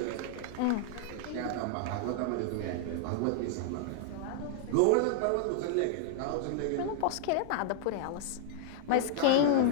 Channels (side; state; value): both; different; correlation -0.01